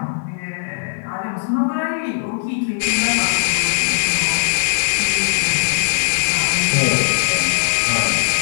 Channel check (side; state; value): right; silent; digital silence